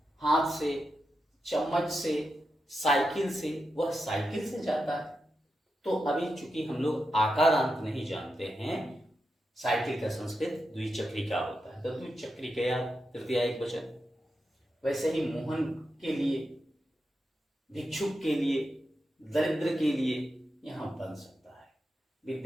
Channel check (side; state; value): both; normal; correlation 0.88